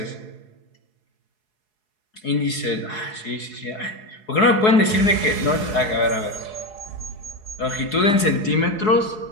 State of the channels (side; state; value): right; late; 4.7 ms